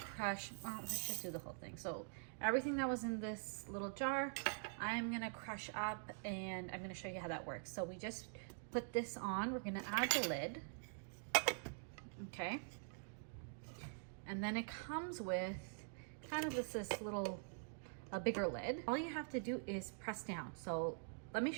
well, let's just do the whole thing. So everything that was in this little jar, I'm gonna crush up, and I'm gonna show you how that works. So we just put this on, we're gonna add the lid, okay? And then it comes with kind of this little, a bigger lid. All you have to do is press down. So let me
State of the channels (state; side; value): silent; left; digital silence